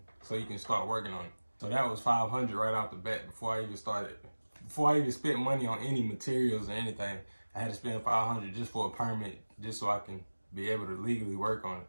so you can start working on it. So that was $500 right off the bat before I even started. Before I even spent money on any materials or anything, I had to spend $500 just for a permit, just so I can be able to legally work on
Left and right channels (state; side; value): inverted; both; correlation -1.00